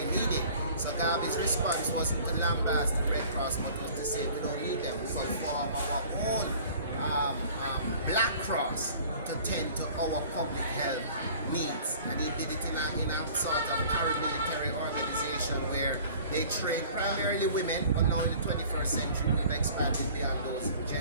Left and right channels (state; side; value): inverted; both; correlation -0.48